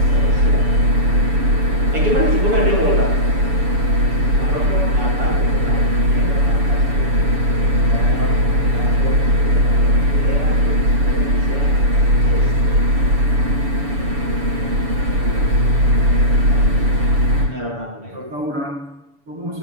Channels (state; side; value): late; left; 7.0 ms